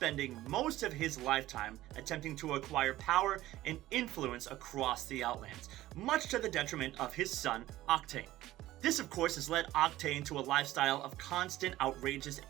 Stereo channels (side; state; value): left; quieter; 15.6 dB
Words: most of his lifetime attempting to acquire power and influence across the Outlands, much to the detriment of his son, Octane. This, of course, has led Octane to a lifestyle of constant outrageous